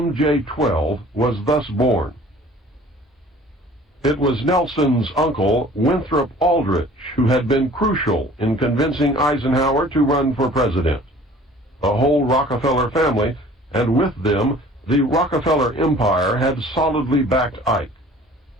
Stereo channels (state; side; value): normal; both; correlation 0.49